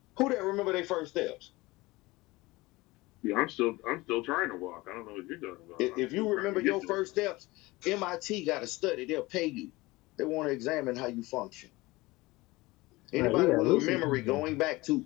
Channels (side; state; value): right; quieter; 21.3 dB